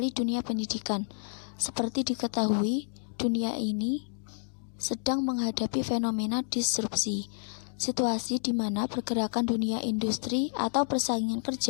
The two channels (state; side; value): silent; right; digital silence